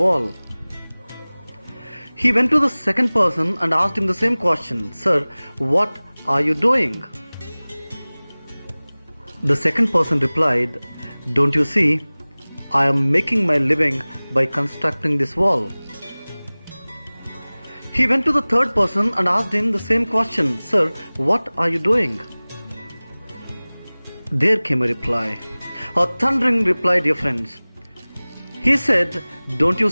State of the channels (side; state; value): both; inverted; correlation -1.00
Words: wall." He went to the second person and asked him the same question, "Sir, what are you doing?" The second person replied, "Don't you see, I am making my living by constructing this wall." He went to the third person and asked him the same question, "Sir, what are you doing?" There came a reply, a thundering reply, dear friends. He said, "Don't you